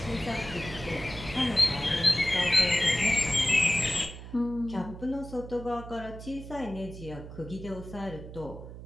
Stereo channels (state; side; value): noise; right; hum, 12 dB below the sound